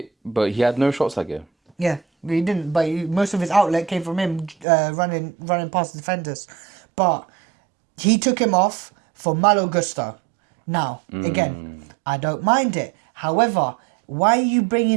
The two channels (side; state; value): left; drops out; at 4.7 s